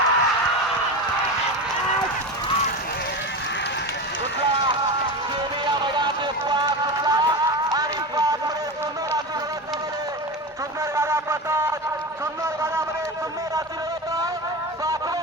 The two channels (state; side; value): normal; both; correlation 0.23